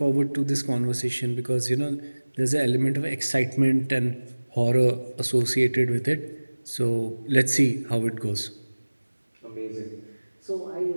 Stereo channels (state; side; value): inverted; both; correlation -1.00